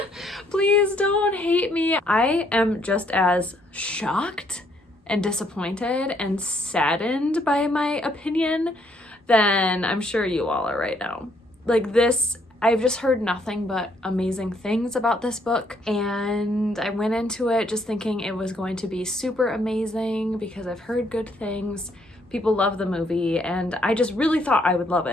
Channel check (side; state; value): both; normal; correlation 0.69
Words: Please don't hate me. I am just as shocked and disappointed and saddened by my opinion than I'm sure you all are right now. Like this, I've just heard nothing but amazing things about this book, and I went into it just thinking it was going to be super amazing because I've heard good things. People love the movie, and I just really thought I would love